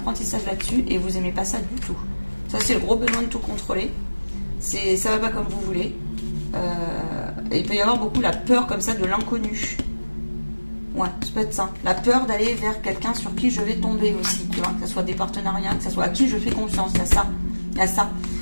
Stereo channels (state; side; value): inverted; both; correlation -1.00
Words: là-dessus et vous n'aimez pas ça du tout. Ça, c'est le gros besoin de tout contrôler. Ça va pas comme vous voulez. Il peut y avoir beaucoup la peur comme ça de l'inconnu. Ouais, ça peut être ça. La peur d'aller vers quelqu'un sur qui je vais tomber aussi. Tu vois, que ce soit des partenariats, que ce soit à qui je fais confiance. Il y a ça.